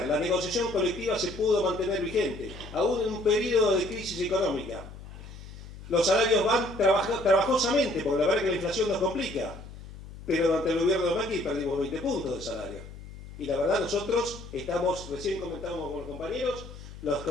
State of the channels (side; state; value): left; noise; hum, 15 dB below the sound